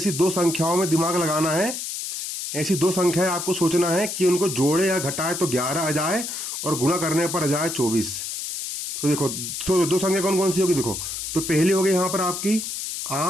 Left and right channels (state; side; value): noise; left; hiss, 5 dB below the sound